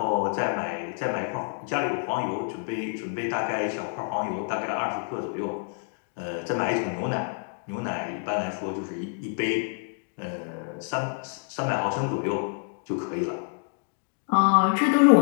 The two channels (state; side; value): silent; right; 60 dB below the other